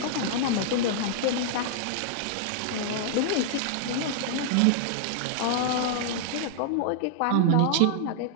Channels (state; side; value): different; both; correlation -0.01